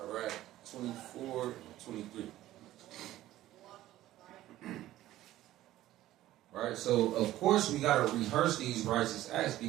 24 and 23. Right? So, of course, we got to rehearse these righteous acts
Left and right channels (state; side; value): quieter; left; 14.7 dB